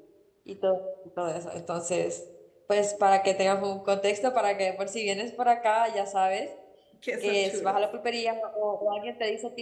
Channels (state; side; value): identical; both; correlation 1.00